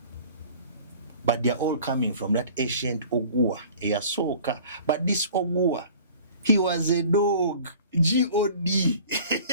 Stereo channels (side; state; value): both; inverted; correlation -0.47